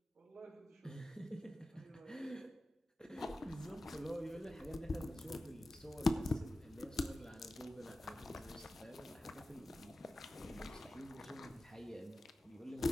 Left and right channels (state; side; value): normal; both; correlation 0.95